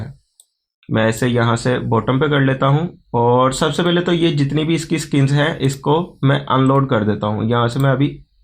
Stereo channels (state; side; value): identical; both; correlation 1.00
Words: मैं इसे यहाँ से बॉटम पे कर लेता हूँ और सबसे पहले तो ये जितनी भी इसकी स्किन्स हैं इसको मैं अनलोड कर देता हूँ। यहाँ से मैं अभी